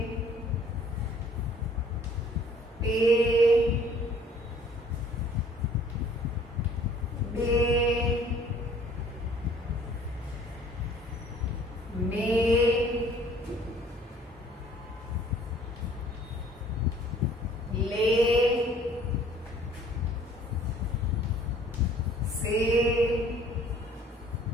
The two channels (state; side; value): normal; both; correlation 0.56